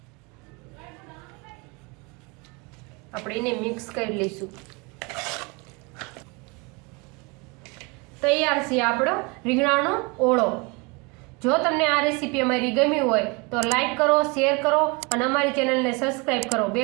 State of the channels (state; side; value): quieter; left; 28.3 dB